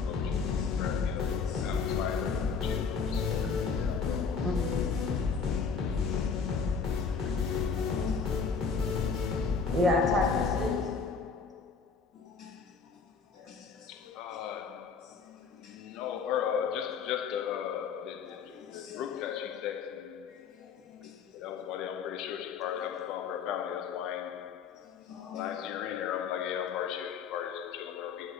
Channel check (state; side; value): quieter; right; 5.5 dB